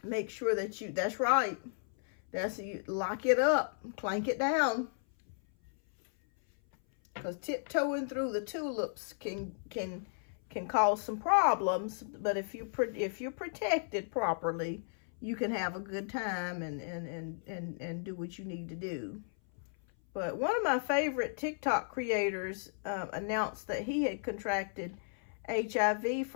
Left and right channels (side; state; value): right; silent; 55 dB below the other